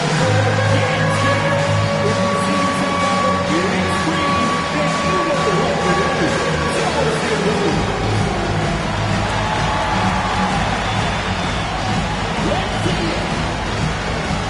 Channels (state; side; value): identical; both; correlation 1.00